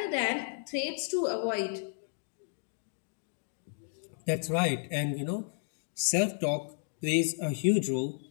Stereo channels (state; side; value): silent; right; digital silence